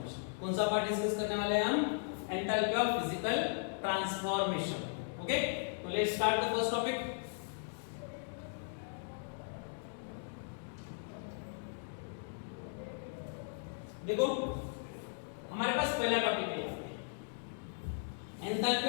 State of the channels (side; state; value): right; silent; digital silence